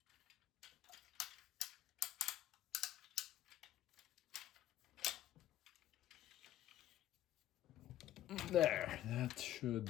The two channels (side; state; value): right; quieter; 12.8 dB